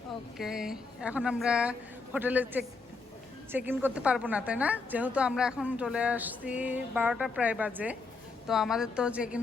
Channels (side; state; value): right; quieter; 4.1 dB